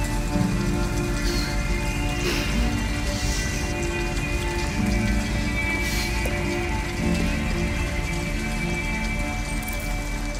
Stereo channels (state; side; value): identical; both; correlation 1.00